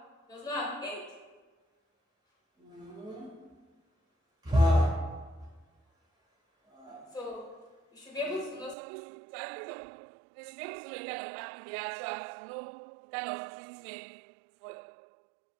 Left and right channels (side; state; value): left; drops out; at 8.8 s